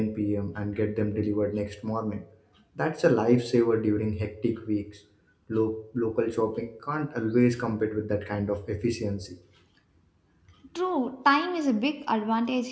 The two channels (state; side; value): identical; both; correlation 1.00